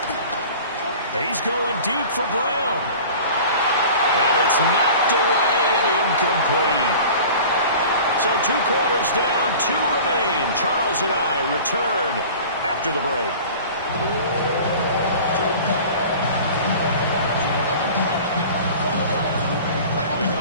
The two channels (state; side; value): inverted; both; correlation -0.41